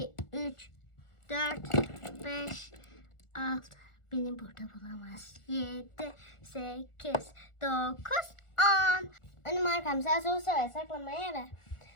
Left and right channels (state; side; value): late; right; 1.4 ms